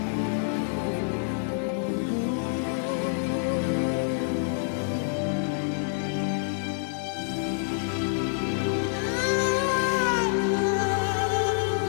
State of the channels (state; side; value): silent; right; digital silence